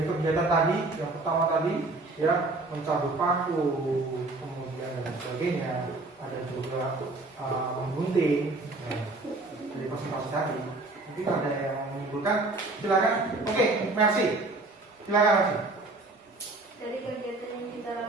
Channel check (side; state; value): left; quieter; 3.2 dB